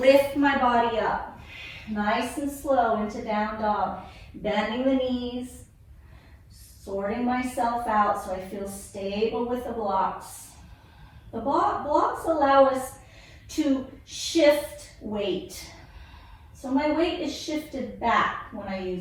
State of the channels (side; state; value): both; identical; correlation 1.00